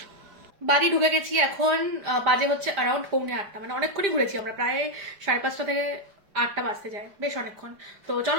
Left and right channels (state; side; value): late; left; 5.0 ms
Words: বাড়ি ঢুকে গেছি এখন, বাজে হচ্ছে অ্যারাউন্ড 7:45, মানে অনেকক্ষণই ঘুরেছি আমরা, প্রায় 5:30 থেকে 8টা বাজতে যায়, বেশ অনেকক্ষণ। তো